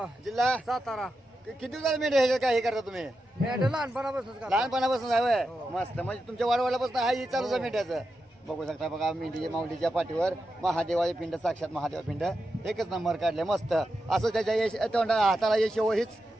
जिल्हा सातारा किती दिवसाला मेंढ्या ह्याच्यात काय हे करता तुम्ही मेंढ लहानपणापासून लहानपणापासून आहे मस्त म्हणजे तुमच्या वाडवाड्यापासून हा ही चालूच आहे मेंढ्याचं बघू शकता बघा मेंढी माऊलीच्या पाठीवर महादेवाची पिंड साक्षात महादेवा पिंड एकच नंबर काढले मस्त असं त्याच्या यश हाताला यश हीच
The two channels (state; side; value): normal; both; correlation 0.88